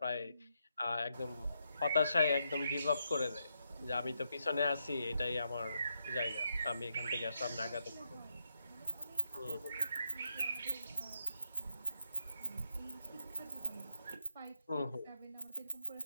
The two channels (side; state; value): both; inverted; correlation -0.81